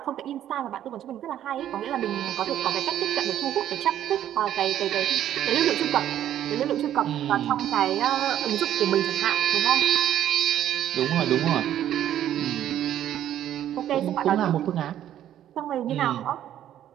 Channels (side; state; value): left; quieter; 11.4 dB